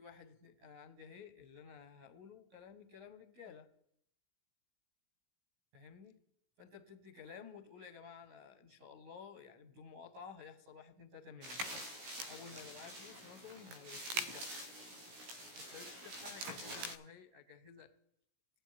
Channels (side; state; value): left; late; 16 ms